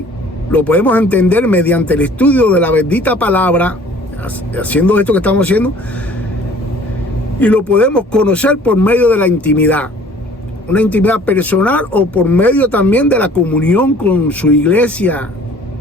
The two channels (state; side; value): normal; both; correlation 0.52